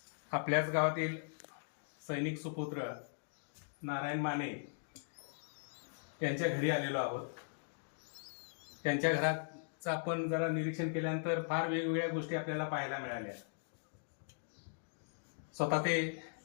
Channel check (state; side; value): silent; right; digital silence